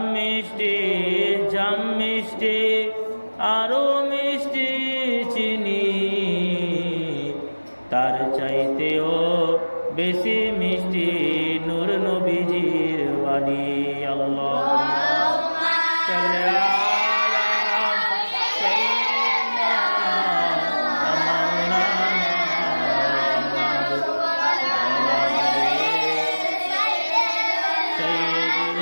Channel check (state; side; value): inverted; both; correlation -1.00